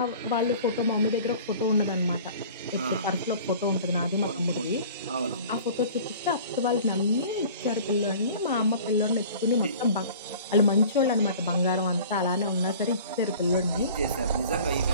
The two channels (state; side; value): inverted; both; correlation -0.45